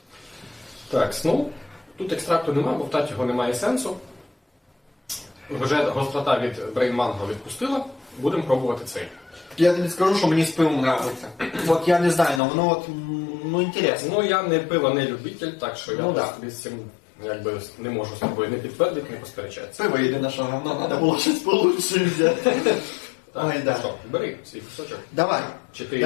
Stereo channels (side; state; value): right; drops out; at 12.4 s